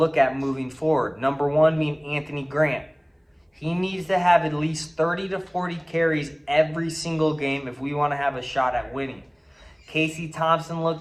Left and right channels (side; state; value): both; identical; correlation 1.00